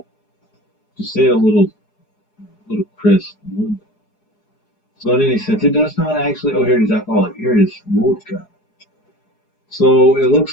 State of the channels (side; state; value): right; late; 4.8 ms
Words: Just say it a little crisp. So in any sense, it does not actually. Oh, here it is. Alcoholic. Here it is. Vodka. So it